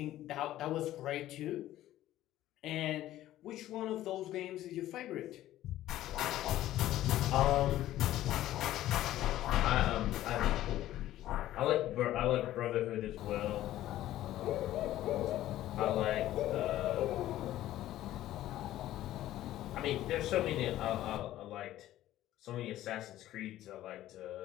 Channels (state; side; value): quieter; right; 14.0 dB